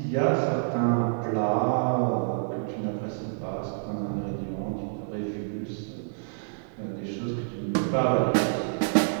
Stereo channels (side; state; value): left; silent; digital silence